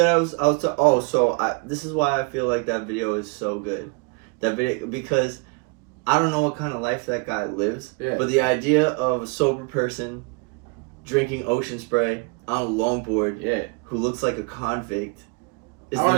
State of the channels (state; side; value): quieter; left; 33.1 dB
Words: this is why I feel like that video is so good. That video, because I don't know what kind of life that guy lives, but the idea of a sober person drinking ocean spray on a longboard, who looks like a convict, is